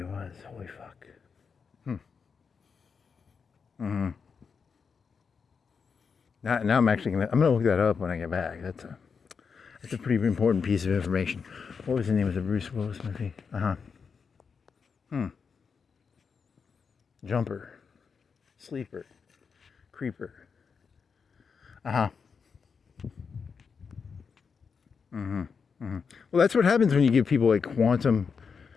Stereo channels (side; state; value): right; quieter; 5.8 dB